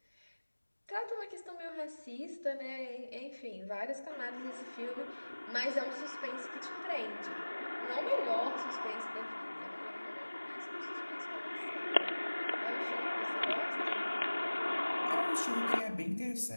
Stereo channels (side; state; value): both; inverted; correlation -1.00